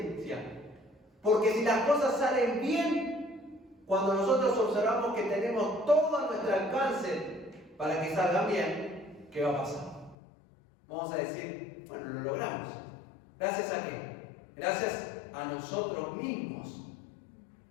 Porque si las cosas salen bien, cuando nosotros observamos que tenemos todo a nuestro alcance para que salgan bien, ¿qué va a pasar? Vamos a decir, bueno, lo logramos. ¿Gracias a qué? Gracias a nosotros mismos.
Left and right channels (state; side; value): drops out; right; at 10.2 s